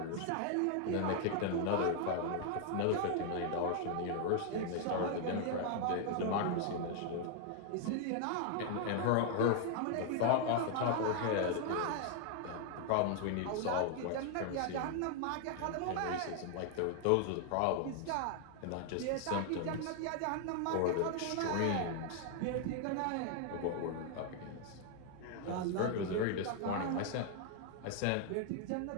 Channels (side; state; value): both; different; correlation 0.00